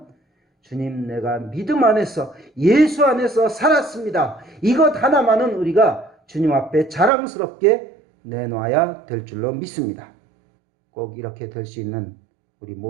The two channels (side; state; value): left; drops out; at 7.1 s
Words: 주님 내가 믿음 안에서 예수 안에서 살았습니다. 이것 하나만은 우리가 주님 앞에 자랑스럽게 내놔야 될 줄로 믿습니다. 꼭 이렇게 될 수 있는 우리